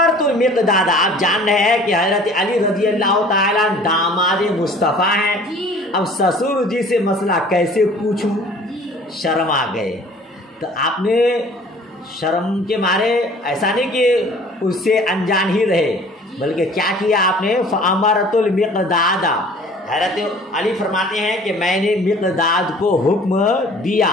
المقداد، آپ جان رہے ہیں کہ حضرت علی رضی اللہ تعالیٰ داماد مصطفیٰ ہیں، اب سسر جی سے مسئلہ کیسے پوچھوں، شرم آ گئے، تو آپ نے شرم کے مارے ایسا نہیں کہ اس سے انجان ہی رہے، بلکہ کیا کیا آپ نے؟ فامرت المقداد، حضرت علی فرماتے ہیں کہ میں نے مقداد کو حکم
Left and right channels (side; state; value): both; normal; correlation 0.50